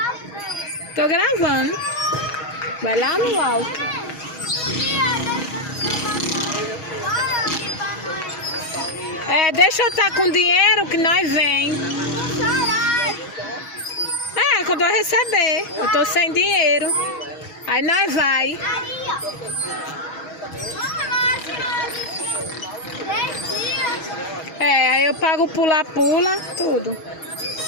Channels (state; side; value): late; right; 6.3 ms